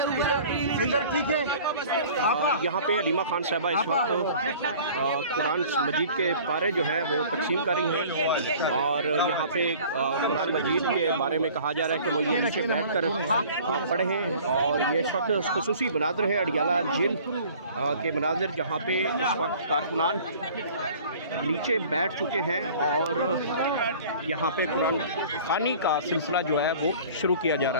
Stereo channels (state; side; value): inverted; both; correlation -0.47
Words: इधर ठीक है। आप यहाँ पे अलीमा खान साहबा इस वक्त कुरान मजीद के पारे जो है वो तकसीम कर रही हैं और यहाँ पे कुरान मजीद के बारे में कहा जा रहा है कि वो ये नीचे बैठ कर पढ़ें और ये इस वक्त खुसूसी मनाज़िर है अडियाला जेल के मनाज़िर, जहाँ पे इस वक्त कारकुनान नीचे बैठ चुके हैं और यहाँ पे कुरान खानी का सिलसिला जो है वो शुरू किया जा